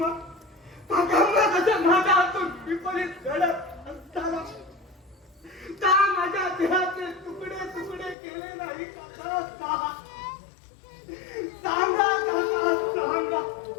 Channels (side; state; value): right; drops out; at 8.2 s